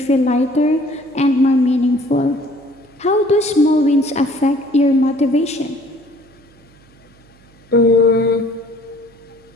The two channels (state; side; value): noise; right; hum, 29 dB below the sound